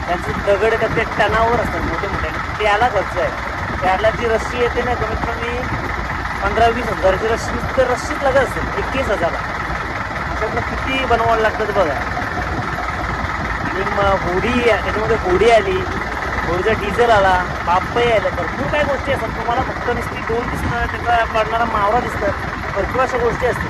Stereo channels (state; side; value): identical; both; correlation 1.00